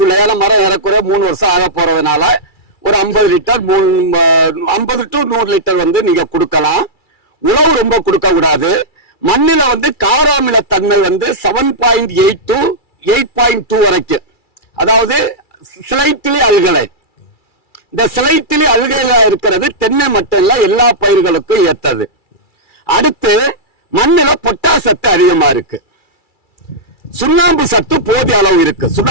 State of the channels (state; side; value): late; right; 2.3 ms